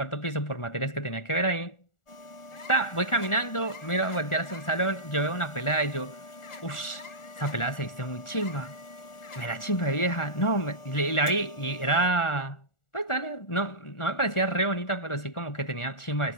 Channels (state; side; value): late; right; 1.4 ms